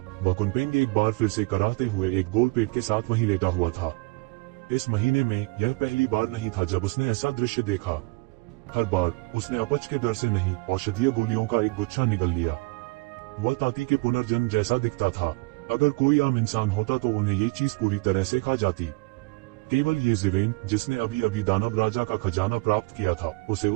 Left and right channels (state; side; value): quieter; left; 26.3 dB